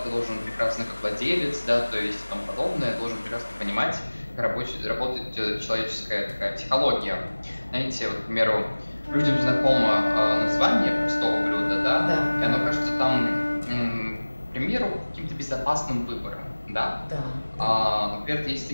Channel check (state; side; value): inverted; both; correlation -1.00